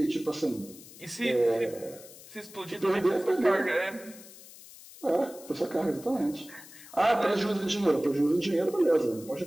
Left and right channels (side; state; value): left; noise; hiss, 19 dB below the sound